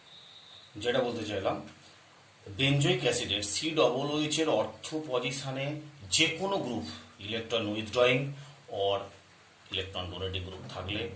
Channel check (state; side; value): identical; both; correlation 1.00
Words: যেটা বলতে চাইলাম, benzoic অ্যাসিডের COOH এর অর্থ পজিশনে যে কোনো group electron withdrawing or electron donating group থাকলে